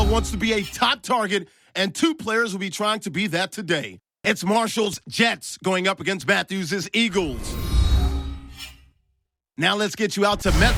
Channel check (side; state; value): both; identical; correlation 1.00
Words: wants to be a top target, and two players will be trying to be that today. It's Marshall's Jets going up against Matthews' Eagles. Now let's get you out to